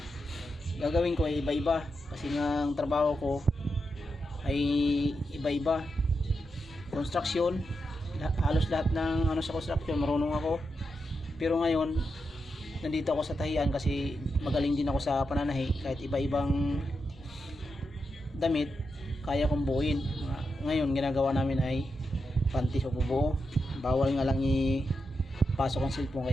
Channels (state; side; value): normal; both; correlation 0.86